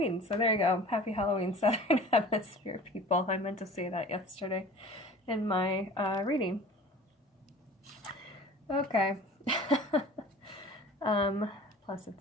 So there you go. Happy Halloween, Southern Hemisphere people. I meant to say that yesterday in my reading. Okay. Plus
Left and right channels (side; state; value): both; normal; correlation 0.43